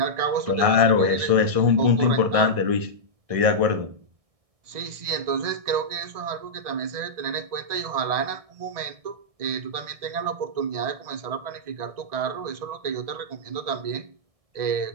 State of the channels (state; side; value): late; left; 1.6 ms